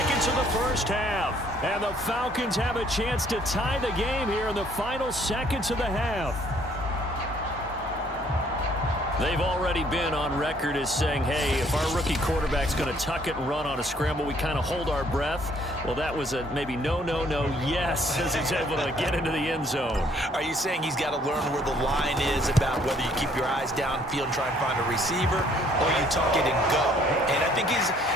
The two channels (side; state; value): both; normal; correlation 0.63